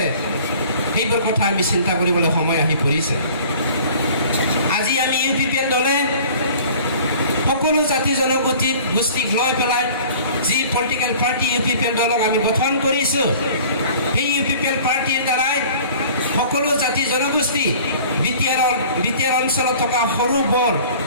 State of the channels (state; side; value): inverted; both; correlation -0.47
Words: সেইবোৰ কথা আমি চিন্তা কৰিবলৈ সময় আহি পৰিছে। আজি আমি UPPN দলে সকলো জাতি জনগোষ্ঠীক লৈ পেলাই যি পলিটিকেল পাৰ্টি UPPN দলক আমি গঠন কৰিছোঁ, সেই UPPN পাৰ্টিৰ দ্বাৰাই সকলো জাতি জনগোষ্ঠী BTR অঞ্চলত থকা সৰু বৰ